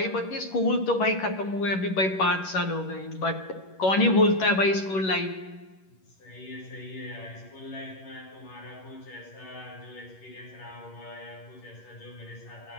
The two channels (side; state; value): right; late; 11 ms